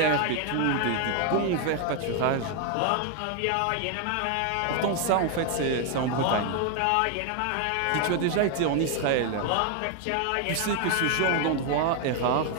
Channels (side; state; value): both; different; correlation 0.01